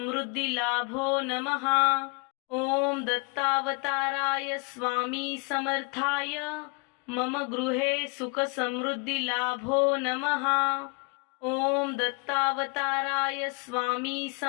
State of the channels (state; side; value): quieter; right; 31.4 dB